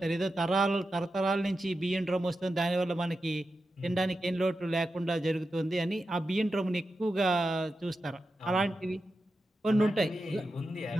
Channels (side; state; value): both; normal; correlation 0.90